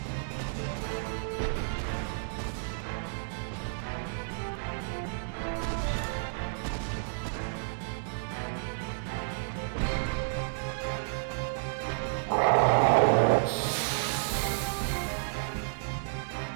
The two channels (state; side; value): silent; left; digital silence